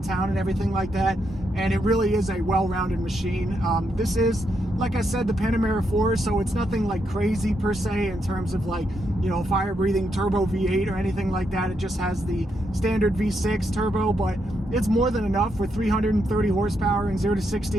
town and everything like that. And it really is a well-rounded machine. This is, like I said, the Panamera 4, so it's nothing like crazy per se in terms of like, you know, fire-breathing turbo V8 or anything like that. It just has the standard V6 turbo, but it's more than enough for 330 horsepower and 0 to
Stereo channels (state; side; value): normal; both; correlation 0.80